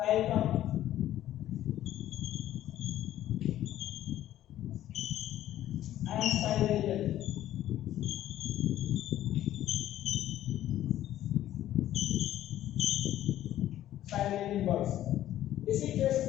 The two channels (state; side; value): quieter; right; 12.8 dB